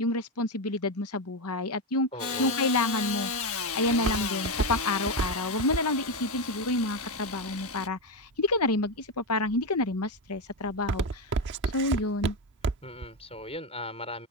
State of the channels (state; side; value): normal; both; correlation 0.10